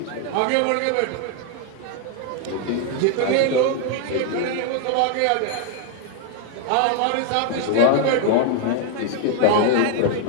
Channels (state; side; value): different; both; correlation 0.00